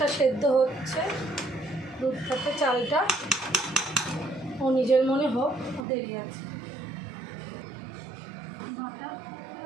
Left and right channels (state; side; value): drops out; left; at 5.9 s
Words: সেদ্ধ হচ্ছে, দুধ থেকে চালটা ও নিজের মনে হোক, দেরি আছে।